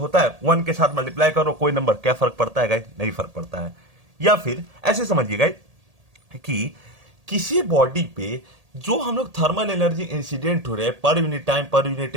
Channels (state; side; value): late; left; 1.8 ms